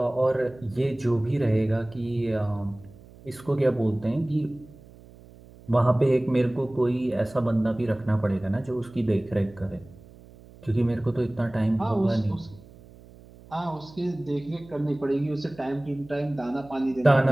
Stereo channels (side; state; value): right; noise; hum, 22 dB below the sound